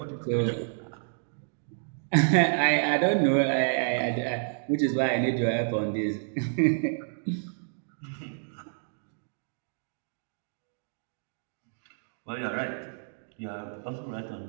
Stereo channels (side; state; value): left; silent; digital silence